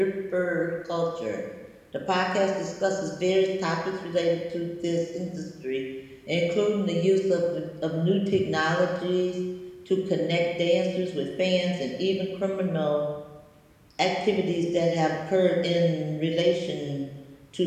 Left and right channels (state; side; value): identical; both; correlation 1.00